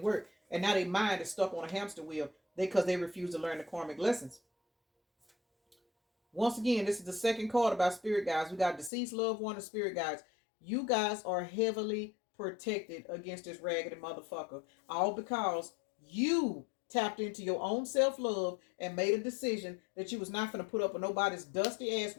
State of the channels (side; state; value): right; drops out; at 8.9 s